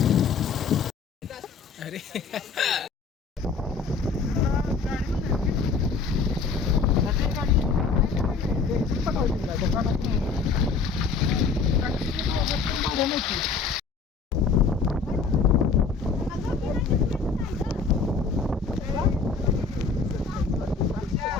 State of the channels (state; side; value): quieter; right; 4.9 dB